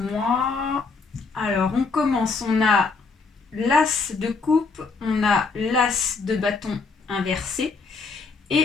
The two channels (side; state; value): right; quieter; 4.4 dB